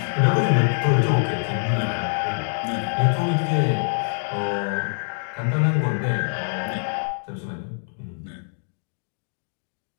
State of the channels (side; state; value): right; silent; digital silence